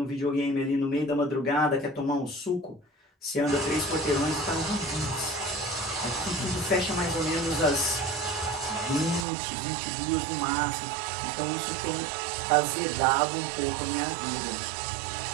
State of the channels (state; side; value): drops out; left; at 9.2 s